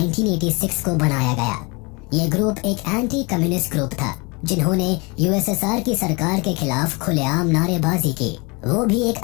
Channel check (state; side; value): quieter; right; 28.2 dB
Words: को बनाया गया। ये ग्रुप एक एंटी कम्युनिस्ट ग्रुप था, जिन्होंने यूएसएसआर की सरकार के खिलाफ खुलेआम नारेबाजी की, वो भी एक